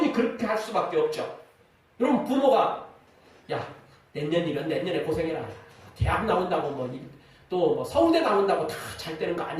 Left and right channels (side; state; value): both; identical; correlation 1.00